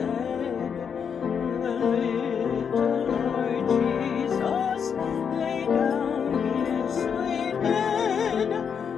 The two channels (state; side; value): quieter; right; 7.0 dB